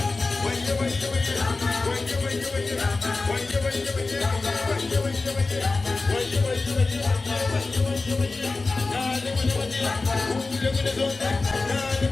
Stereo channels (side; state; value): right; quieter; 3.6 dB